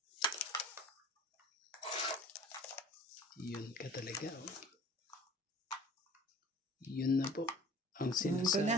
Yun ka talaga. Oh. Yun na po ang Yun ko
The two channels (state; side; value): normal; both; correlation 0.46